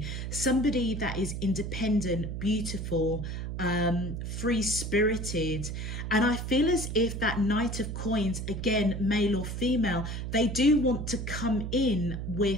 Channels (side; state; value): right; noise; hum, 5 dB below the sound